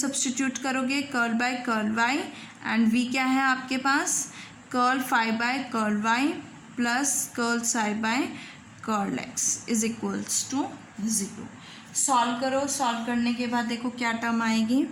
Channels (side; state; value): both; identical; correlation 1.00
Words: करोगे, curl by curl y and v क्या है आपके पास, curl phi by curl y plus curl psi by curl x is equals to 0। Solve करो, solve करने के बाद देखो क्या टर्म आएगी,